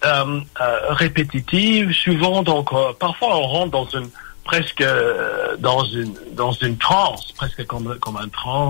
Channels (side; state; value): right; silent; 65 dB below the other